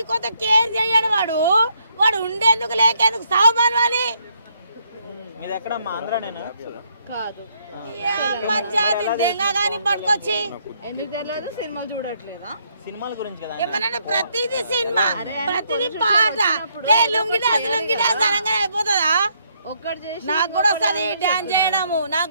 కొత్త కేర్ చేయడు వాడు వాడు ఉండేందుకు లేకేందుకు సాగుమానవాలి కాదు మంచి దెంగ కానీ పట్టుకొచ్చి ఎందుకు తెలియదు సినిమా చూడట్లేదా సినిమాల గురించి కదా ఏమన్నా ప్రతిదీ సినిమా ప్రతిదీ పాట లుంగిడాస్ అనగా అయిపోతుందా ఒక్కటి చేసి నాకు కూడా వస్తుంది డాన్స్ చేయడము నాకు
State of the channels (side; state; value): both; inverted; correlation -0.72